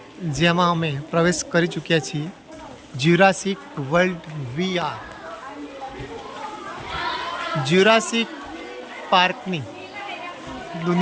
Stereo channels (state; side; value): identical; both; correlation 1.00